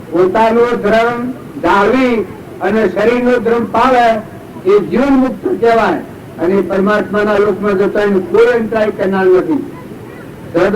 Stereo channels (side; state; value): both; identical; correlation 1.00